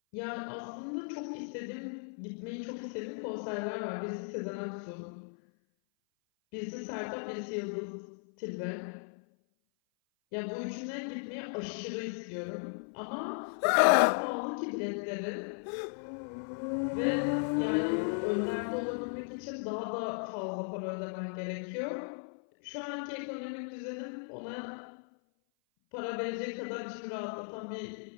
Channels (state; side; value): silent; right; 54 dB below the other